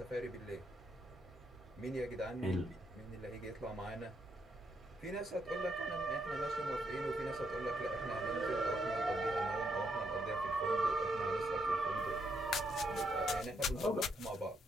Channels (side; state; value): both; normal; correlation 0.77